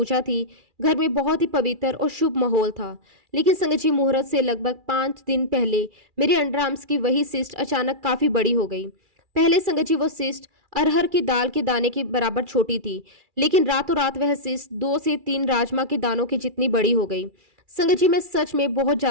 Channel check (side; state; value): left; late; 2.4 ms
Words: थी। घर में बहुत ही पवित्र और शुभ माहौल था। लेकिन संगत जी, मुहूर्त से लगभग 5 दिन पहले मेरे अंडर आर्म्स की वही सिस्ट अचानक काफी बड़ी हो गई। पहले संगत जी, वो सिस्ट अरहर की दाल के दाने के बराबर छोटी थी। लेकिन रातों रात वह सिस्ट 2 से 3 राजमा के दानों की जितनी बड़ी हो गई। संगत जी, मैं सच में बहुत